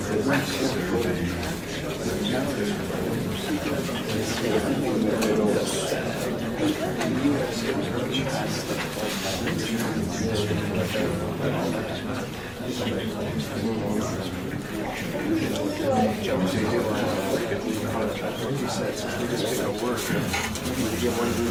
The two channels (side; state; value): both; identical; correlation 1.00